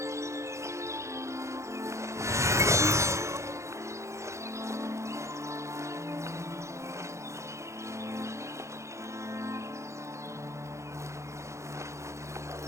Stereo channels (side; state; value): left; late; 0.14 ms